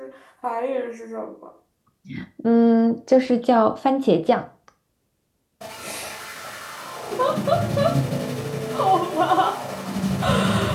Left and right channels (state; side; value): identical; both; correlation 1.00